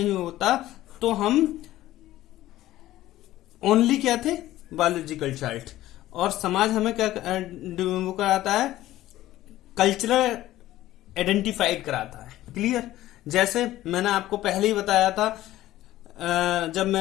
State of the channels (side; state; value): right; quieter; 15.0 dB